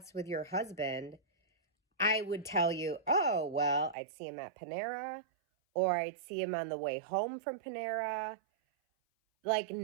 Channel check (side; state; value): left; drops out; at 4.0 s